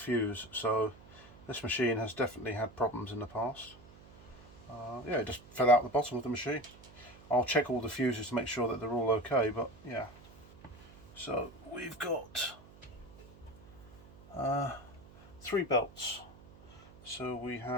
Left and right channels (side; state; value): right; noise; hum, 21 dB below the sound